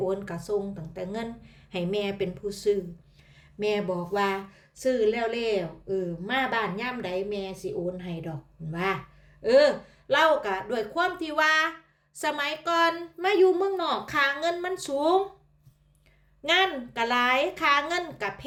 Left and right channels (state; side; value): identical; both; correlation 1.00